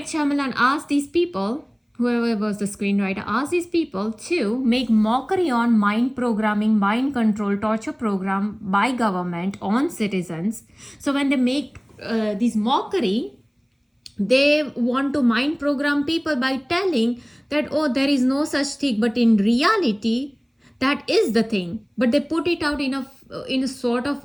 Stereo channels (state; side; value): identical; both; correlation 1.00